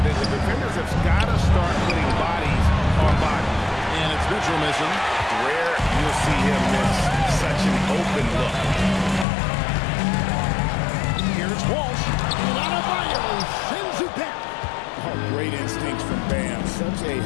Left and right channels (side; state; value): right; drops out; at 9.2 s